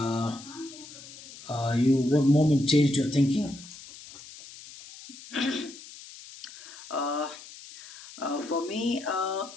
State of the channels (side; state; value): left; noise; hiss, 17 dB below the sound